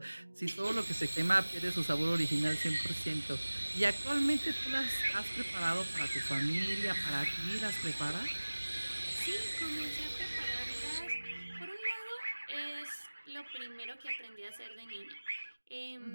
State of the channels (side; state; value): both; inverted; correlation -1.00